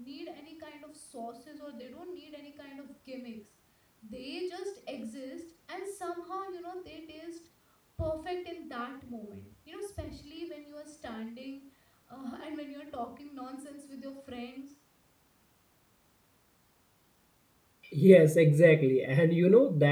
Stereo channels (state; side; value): identical; both; correlation 1.00